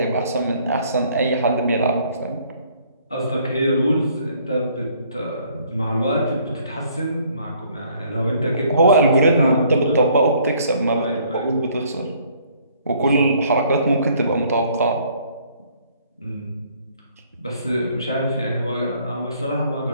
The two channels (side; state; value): both; inverted; correlation -0.62